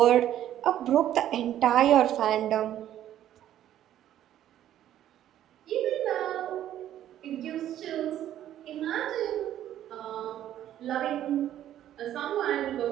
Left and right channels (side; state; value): left; quieter; 11.8 dB